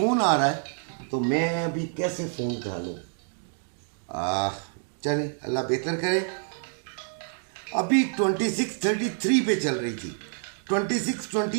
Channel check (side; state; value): left; silent; digital silence